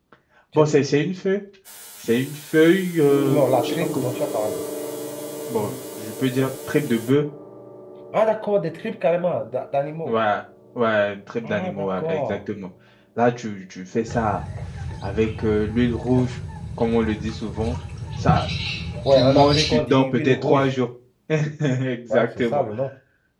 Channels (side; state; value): both; identical; correlation 1.00